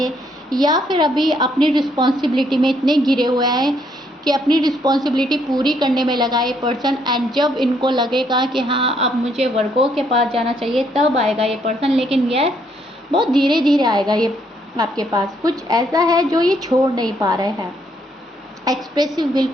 या फिर अभी अपनी रिस्पॉन्सिबिलिटी में इतने घिरे हुए हैं कि अपनी रिस्पॉन्सिबिलिटी पूरी करने में लगा ये पर्सन। एंड जब इनको लगेगा कि हाँ अब मुझे वर्गों के पास जाना चाहिए तब आएगा ये पर्सन। लेकिन यस, बहुत धीरे धीरे आएगा ये आपके पास। कुछ ऐसा है जो ये छोड़ नहीं पा रहे हैं, एक्सप्रेसिव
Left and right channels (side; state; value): both; normal; correlation 0.71